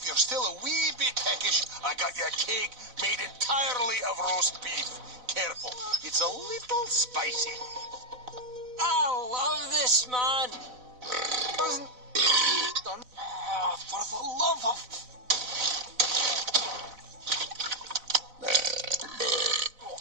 you're still a wee bit peckish, I got you a cake made entirely of roast beef. Careful, it's a little spicy. I love this, man. Wasn't done. For the love of...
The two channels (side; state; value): left; late; 4.0 ms